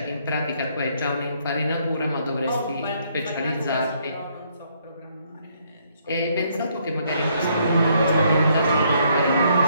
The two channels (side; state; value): both; inverted; correlation -0.70